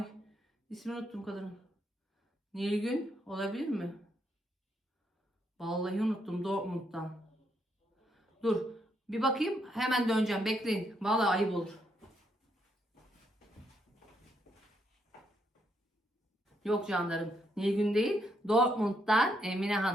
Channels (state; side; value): normal; both; correlation 0.76